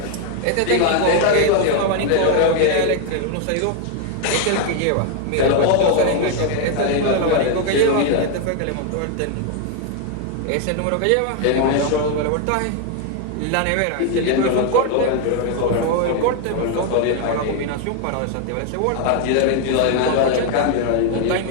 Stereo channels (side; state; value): both; different; correlation 0.00